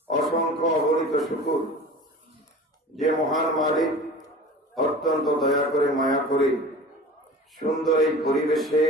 অসংখ্য অগণিত শুকর যে মহান মালিক অত্যন্ত দয়া করে মায়া করে সুন্দর এই পরিবেশে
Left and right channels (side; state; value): both; normal; correlation 0.39